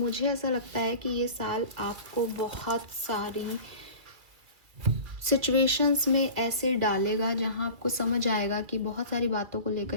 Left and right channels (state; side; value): late; left; 2.2 ms